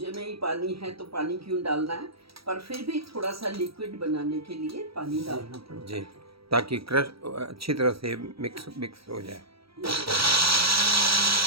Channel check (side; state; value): left; late; 0.76 ms